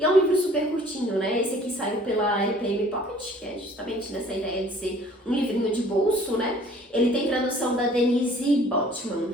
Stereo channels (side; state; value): both; normal; correlation 0.54